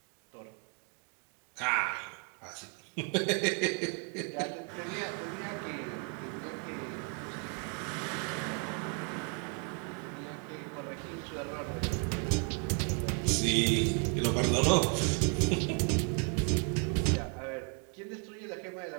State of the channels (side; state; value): left; quieter; 38.4 dB